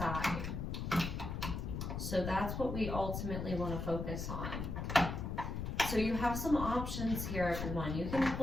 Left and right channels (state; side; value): noise; left; rumble, 4 dB below the sound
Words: So that's what we ultimately want to focus on. So you have some options here, everyone. You can